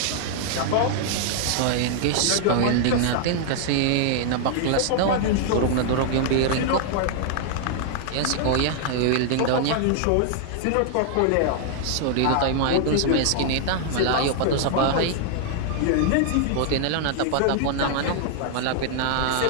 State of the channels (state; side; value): different; both; correlation 0.00